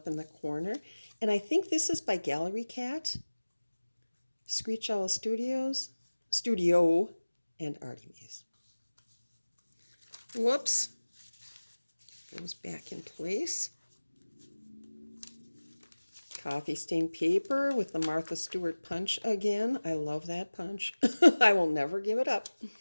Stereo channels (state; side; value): inverted; both; correlation -1.00